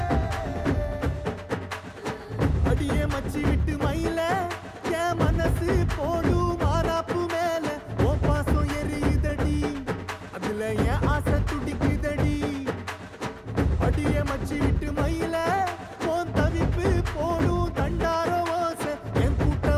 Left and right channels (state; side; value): identical; both; correlation 1.00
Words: அடியே மச்சி விட்டு மயில என் மனசு போடும் மாறாப்பு மேல ஓ பாசம் எரியுதடி அதுல என் ஆசை துடிக்குதடி அடியே மச்சி விட்டு மயில போன் தவிப்பு போடும் தண்டார ஓசை என்